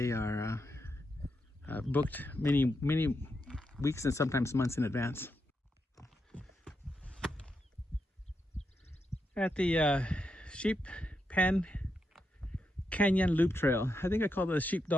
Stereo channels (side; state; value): both; normal; correlation 0.84